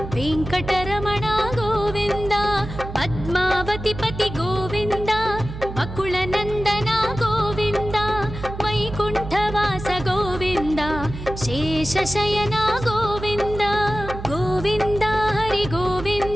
वेङ्कटरमण गोविन्द पद्मावति पति गोविन्द बकुलनन्दन गोविन्द वैकुण्ठवास गोविन्द शेषशयन गोविन्द गोविन्द हरि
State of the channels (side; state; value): right; noise; hum, 10 dB below the sound